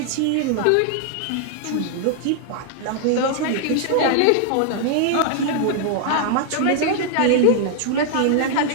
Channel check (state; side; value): different; both; correlation 0.00